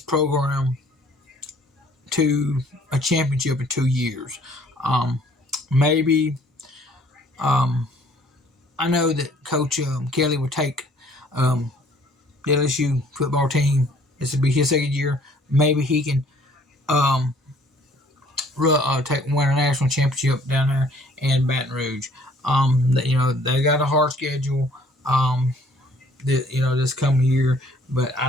program to a championship in 2 years. Maybe I know that Coach Kelly would take the LSU football team. This would be his second year. Maybe he can win a national championship down there in Baton Rouge. They got a hard schedule. This coming year, but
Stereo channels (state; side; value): normal; both; correlation 0.58